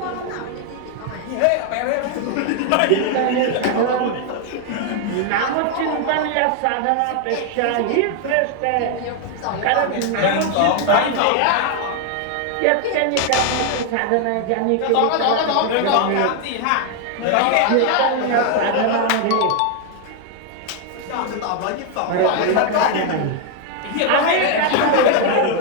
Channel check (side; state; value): both; different; correlation 0.00